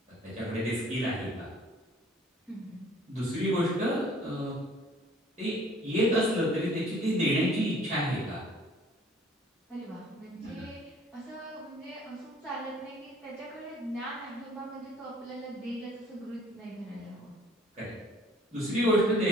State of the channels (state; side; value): normal; both; correlation 0.55